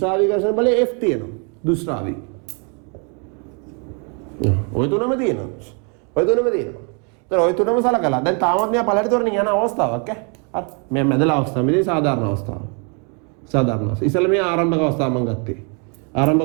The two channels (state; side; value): quieter; left; 36.9 dB